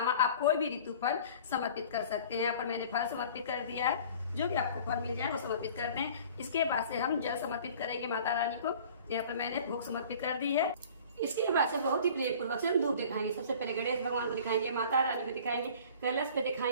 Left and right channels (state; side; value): inverted; both; correlation -0.46